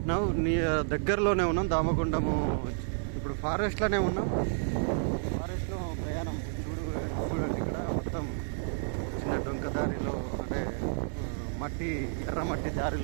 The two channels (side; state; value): left; silent; digital silence